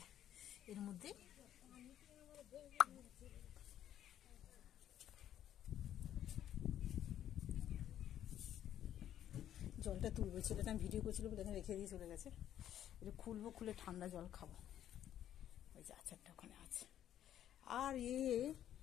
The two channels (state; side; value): quieter; right; 11.0 dB